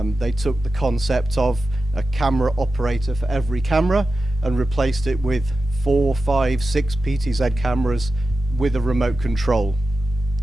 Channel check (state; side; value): normal; both; correlation 0.92